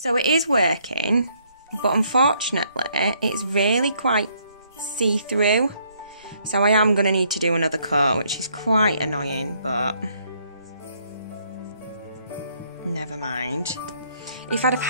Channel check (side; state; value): both; inverted; correlation -0.68